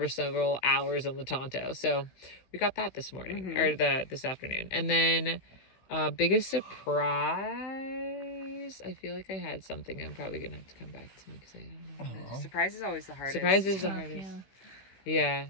several hours on the Tonto. So we got that this morning or this afternoon. And then biggest surprise, I feel like I had something. I'm probably gonna have to come back to me because I don't know. Surprise is always the hardest. Surprise is the hardest. Yeah.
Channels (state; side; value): late; right; 16 ms